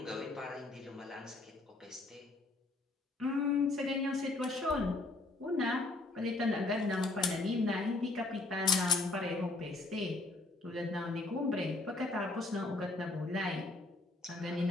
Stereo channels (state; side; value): quieter; right; 3.2 dB